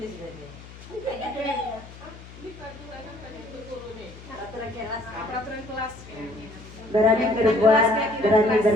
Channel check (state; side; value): noise; left; hum, 17 dB below the sound